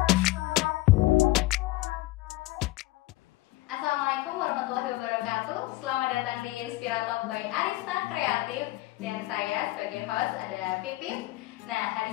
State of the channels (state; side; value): quieter; right; 18.8 dB